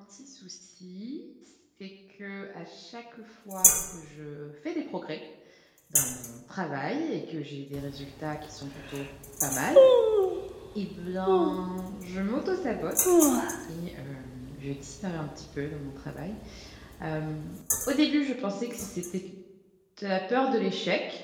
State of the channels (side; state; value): both; identical; correlation 1.00